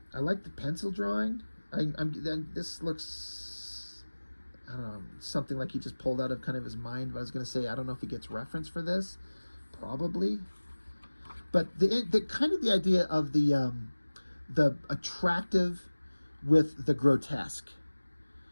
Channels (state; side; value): inverted; both; correlation -1.00